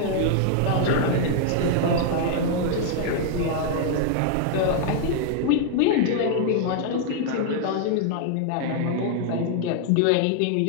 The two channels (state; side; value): different; both; correlation 0.00